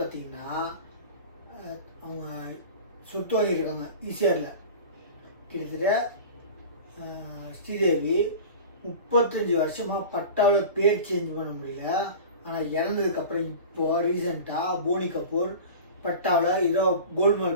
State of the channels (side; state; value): both; inverted; correlation -0.36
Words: பார்த்தீங்கன்னா, அவங்க சொத்து வாங்கியிருக்காங்க ஈசிஆரில். கிட்டத்தட்ட ஸ்ரீதேவி 35 வருஷமாக பட்டாவில் பேர் சேஞ்ச் பண்ண முடியல. ஆனால் இறந்ததுக்கப்புறம் இப்போது ரீசெண்டாக போனி கபூர் பட்டாவில் ஏதோ